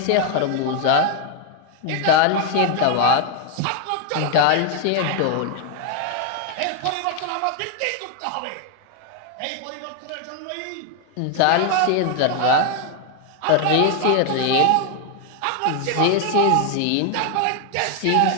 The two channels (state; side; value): different; both; correlation 0.01